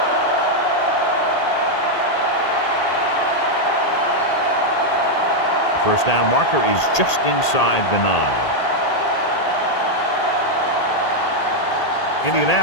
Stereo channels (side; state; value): right; late; 1.8 ms